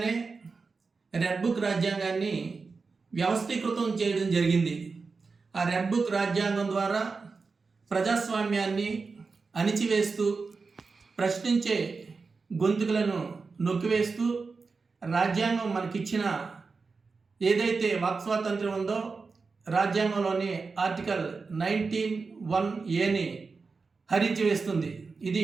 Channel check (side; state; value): left; quieter; 4.5 dB